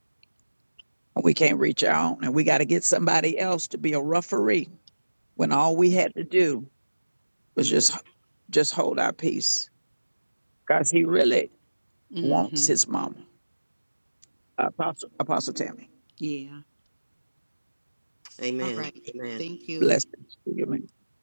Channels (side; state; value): both; inverted; correlation -1.00